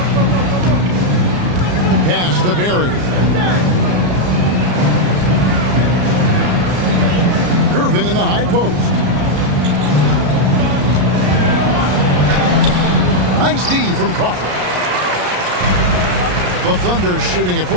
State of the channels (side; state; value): left; late; 34 ms